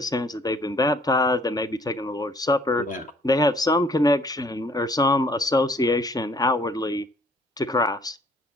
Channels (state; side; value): normal; both; correlation 0.59